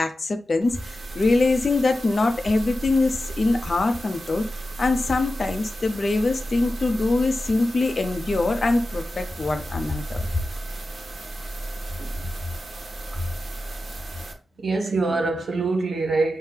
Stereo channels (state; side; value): normal; both; correlation 0.93